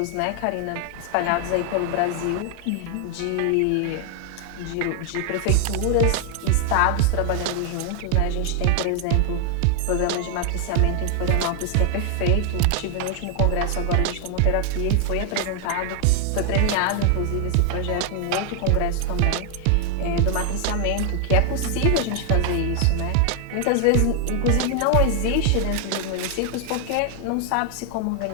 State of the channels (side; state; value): both; different; correlation 0.00